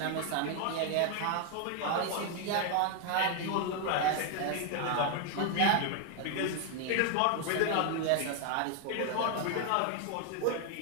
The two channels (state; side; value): different; both; correlation 0.01